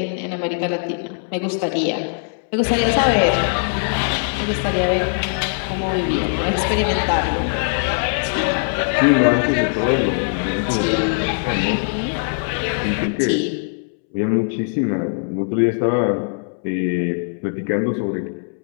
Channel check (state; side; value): silent; right; 65 dB below the other